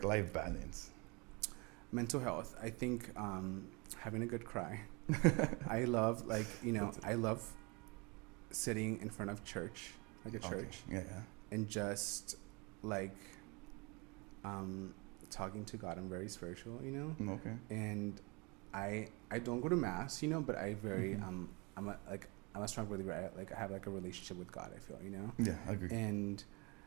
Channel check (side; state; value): left; quieter; 28.9 dB